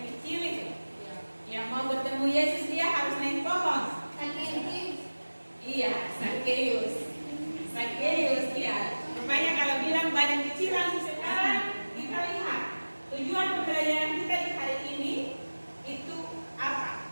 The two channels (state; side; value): inverted; both; correlation -1.00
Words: kecil itu, yang mau bertemu Yesus dia harus naik pohon. Iya, Sakeus ya. Rupanya kalau bilang badan kecil langsung sekarang kita lihat tujuan pembelajaran kita di hari ini itu apa?